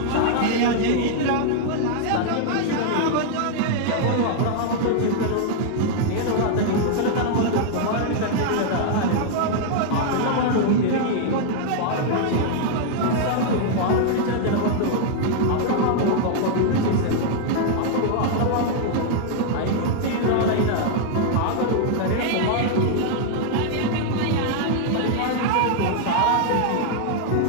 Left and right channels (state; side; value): different; both; correlation -0.01